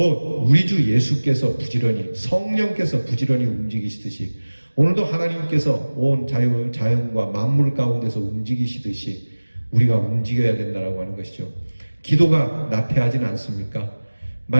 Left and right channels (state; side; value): inverted; both; correlation -1.00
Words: 우리 주 예수께서 부지런히, 성령께서 부지런히 움직이시듯이 오늘도 하나님께서 온 자연과 만물 가운데서 움직이시듯이 우리가 움직여야 된다라고 하는 것이죠. 기도가 나태하진 않습니까?